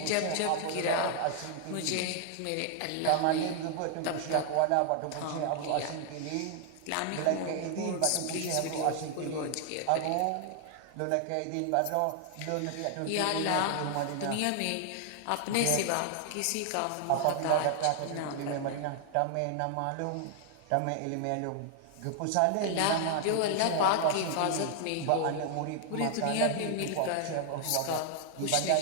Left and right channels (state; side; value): different; both; correlation 0.00